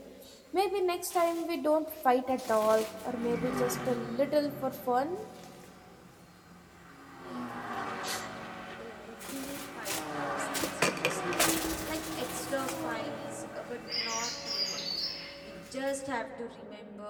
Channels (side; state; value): both; identical; correlation 1.00